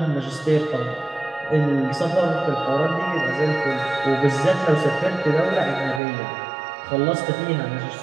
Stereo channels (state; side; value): drops out; left; at 6.0 s